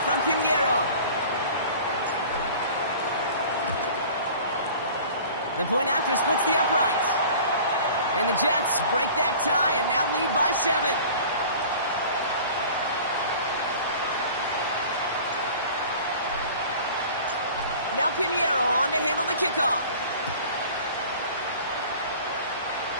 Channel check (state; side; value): inverted; both; correlation -0.44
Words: from Pinheiro. The point after splits the uprights. And the Jets break that tie and now lead by 7. Now Pinheiro on to handle the kickoff.